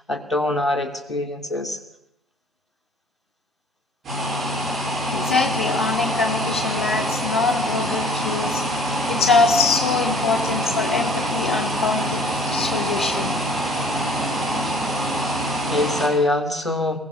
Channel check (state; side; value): normal; both; correlation 0.53